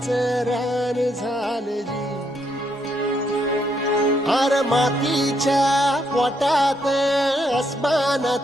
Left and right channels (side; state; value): both; normal; correlation 0.75